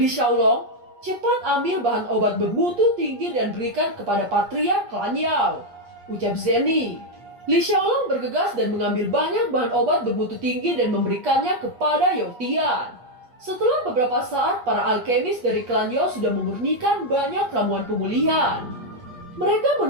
Xiaolong, cepat ambil bahan obat bermutu tinggi dan berikan kepada Patriark klan Yao. Ucap Zenny. Li Xiaolong bergegas dan mengambil banyak bahan obat bermutu tinggi dan memberikannya kepada Yotian. Setelah beberapa saat, para alkemis dari klan Yao sudah memurnikan banyak ramuan pemulihan. Mereka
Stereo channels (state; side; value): late; left; 8.4 ms